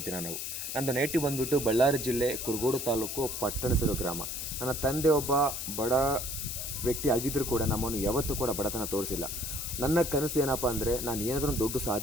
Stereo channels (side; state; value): left; noise; hiss, 5 dB below the sound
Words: ಜನ ನಾವು. ನಂದು ನೇಟಿವ್ ಬಂದುಬಿಟ್ಟು ಬಳ್ಳಾರಿ ಜಿಲ್ಲೆ ಕುರುಗೋಡು ತಾಲೂಕು ಪಟ್ಟಣಸಿರು ಗ್ರಾಮ. ನನ್ನ ತಂದೆ ಒಬ್ಬ ಬಡ ವ್ಯಕ್ತಿ ಆಗಿದ್ದರೂ ಕೂಡ ನಮ್ಮನ್ನು ಯಾವತ್ತೂ ಕೂಡ ಬಡತನ ತೋರಿಸಿಲ್ಲ. ನನ್ನ ಕನಸು ಏನಪ್ಪ ಅಂದರೆ, ನಾನು ಏನಾದರೂ ದೊಡ್ಡ